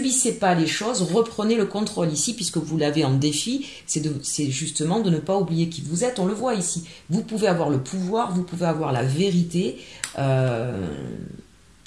pas les choses, reprenez le contrôle ici, puisque vous l'avez en défi, c'est justement de ne pas oublier qui vous êtes, on le voit ici. Vous pouvez avoir le pouvoir, vous pouvez avoir la vérité.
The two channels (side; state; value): both; identical; correlation 1.00